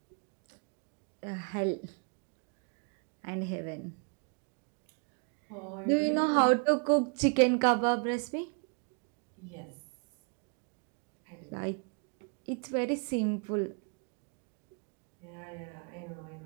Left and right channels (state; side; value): quieter; left; 37.1 dB